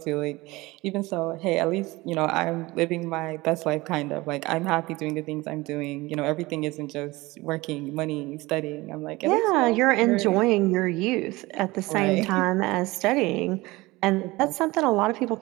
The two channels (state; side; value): quieter; left; 21.1 dB